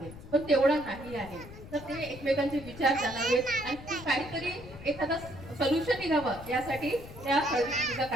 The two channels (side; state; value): left; noise; rumble, 15 dB below the sound